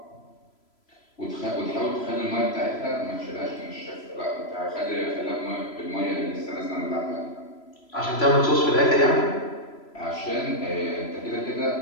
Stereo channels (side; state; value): right; late; 3.0 ms